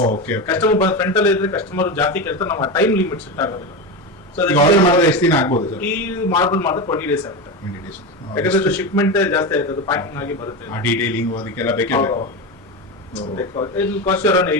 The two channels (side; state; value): both; normal; correlation 0.18